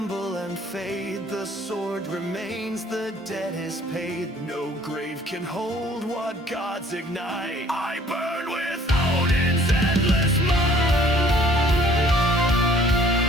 and fade. The sword remains, the debt is paid. No grave can hold what gods ignite. I burn with Odin's endless might.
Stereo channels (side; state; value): both; normal; correlation 0.56